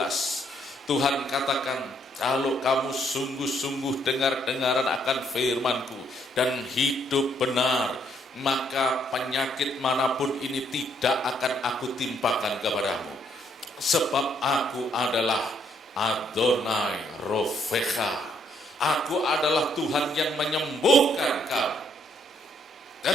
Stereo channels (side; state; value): both; normal; correlation 0.70